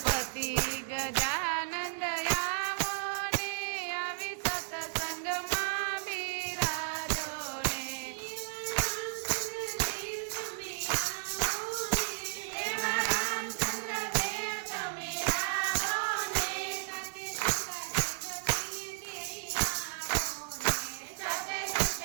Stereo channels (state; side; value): silent; left; 55 dB below the other